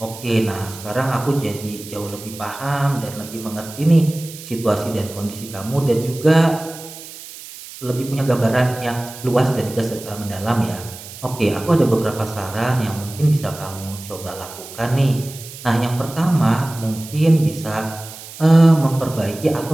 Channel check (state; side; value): noise; right; hiss, 15 dB below the sound